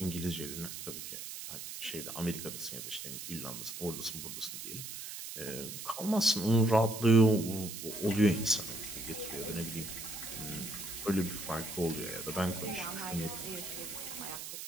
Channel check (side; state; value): right; noise; hiss, 8 dB below the sound